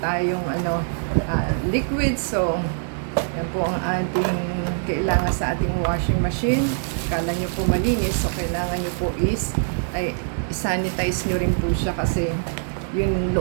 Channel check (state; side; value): silent; left; digital silence